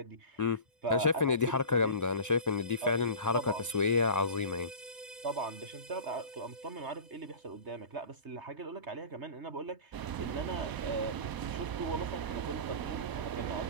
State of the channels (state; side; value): late; left; 1.0 ms